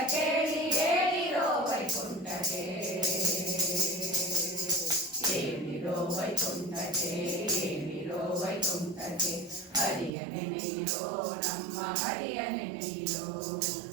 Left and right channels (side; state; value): left; drops out; at 10.1 s